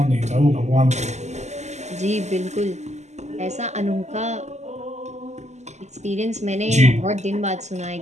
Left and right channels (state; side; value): late; left; 0.33 ms